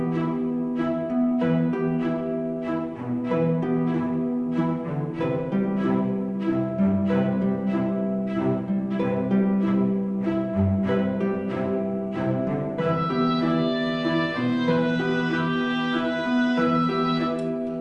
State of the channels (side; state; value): both; identical; correlation 1.00